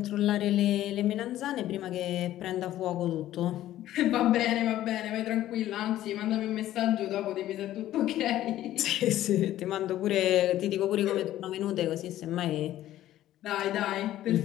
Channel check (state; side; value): quieter; right; 13.5 dB